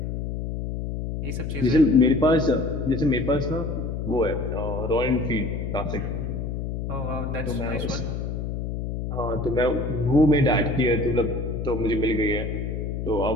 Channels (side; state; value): left; noise; hum, 4 dB below the sound